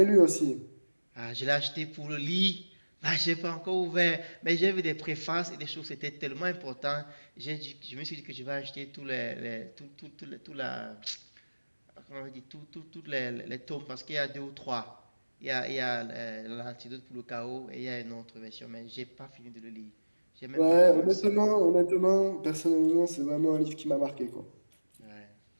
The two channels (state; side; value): inverted; both; correlation -1.00